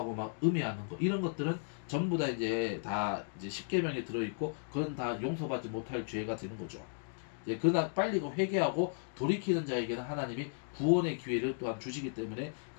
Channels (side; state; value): right; silent; digital silence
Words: 막 음해하는 것, 이런 것들은 전부 다 이제 십계명에 들어있고 그건 다 용서받지 못할 죄가 되는 거죠. 그러나 빨리 회개하고 돌이키는 자에게는 하나님이 구원의 기회를 또한 주시기 때문에